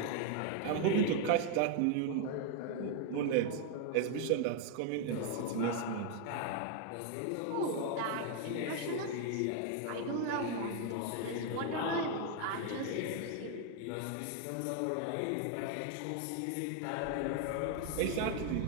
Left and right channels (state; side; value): different; both; correlation 0.01